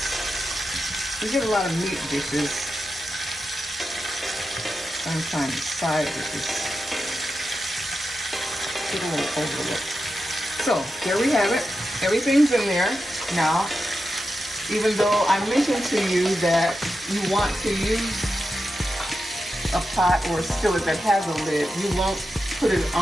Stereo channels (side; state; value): both; normal; correlation 0.90